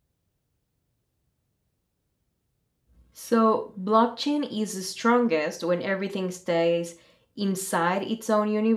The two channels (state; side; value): identical; both; correlation 1.00